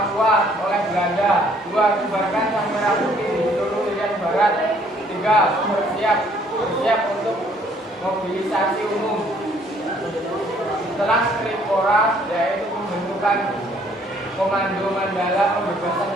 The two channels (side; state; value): both; normal; correlation 0.63